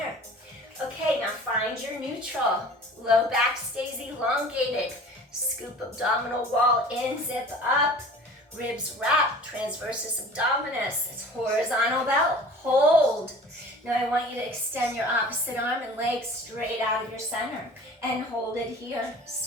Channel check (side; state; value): both; normal; correlation 0.44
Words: Okay, now find your neutral. Low back stays elongated. Scoop abdominal wall in, zip up. Ribs wrap, transversus abdominis. It's horizontal belt. Hold. Now I want you to extend your opposite arm and leg straight out of your center. And hold it here.